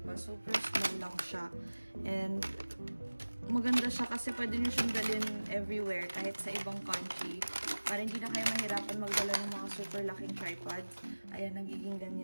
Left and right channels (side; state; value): both; inverted; correlation -1.00